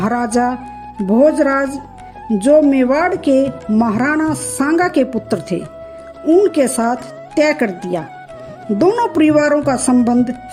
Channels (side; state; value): both; identical; correlation 1.00